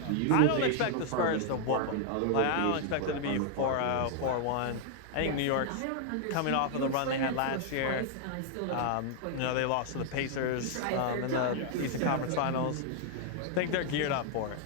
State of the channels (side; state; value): both; different; correlation 0.00